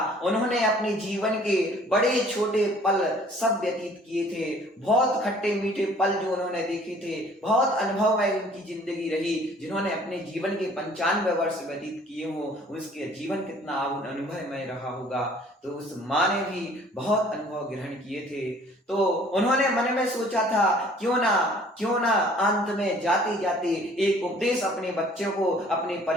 उन्होंने अपने जीवन के बड़े छोटे पल सब व्यतीत किए थे, बहुत खट्टे मीठे पल जो उन्होंने देखे थे, बहुत अनुभवमय उनकी जिंदगी रही। जिन्होंने अपने जीवन के 95 वर्ष व्यतीत किए हो, उसके जीवन कितना अनुभवमय रहा होगा। तो उस माँ ने भी बहुत अनुभव ग्रहण किए थे। तो उन्होंने मन में सोचा था क्यों ना अंत में मैं जाते जाते एक उपदेश अपने बच्चों को, अपने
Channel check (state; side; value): normal; both; correlation 0.54